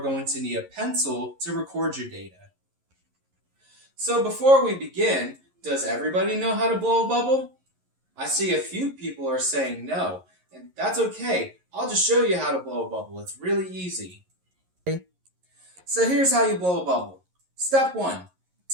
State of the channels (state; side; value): late; left; 11 ms